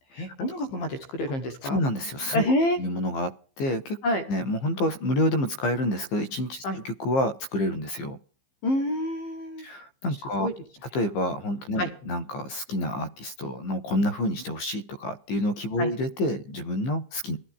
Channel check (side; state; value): right; late; 15 ms